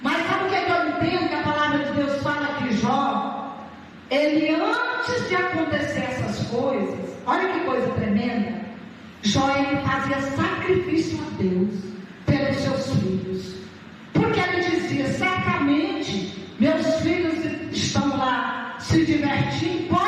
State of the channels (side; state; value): both; identical; correlation 1.00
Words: Mas sabe o que eu entendo que a palavra de Deus fala que Jó, ele antes de acontecer essas coisas, olha que coisa tremenda, Jó, ele fazia sacrifício a Deus pelos seus filhos, porque ele dizia: certamente meus filhos estão lá se divertindo,